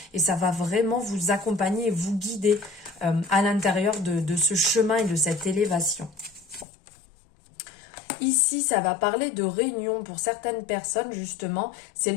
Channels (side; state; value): right; drops out; at 6.7 s